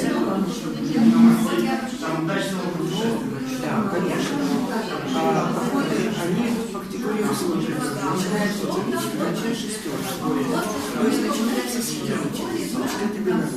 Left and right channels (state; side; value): identical; both; correlation 1.00